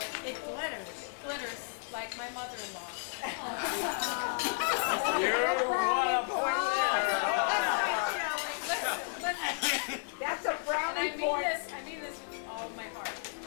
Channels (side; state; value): right; silent; digital silence